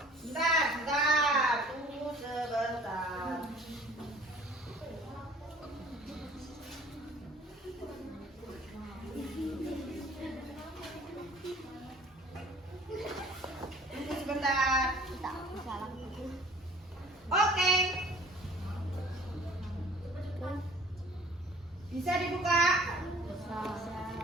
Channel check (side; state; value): both; normal; correlation 0.51